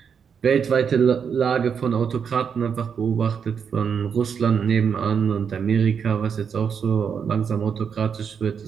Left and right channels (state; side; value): quieter; left; 6.9 dB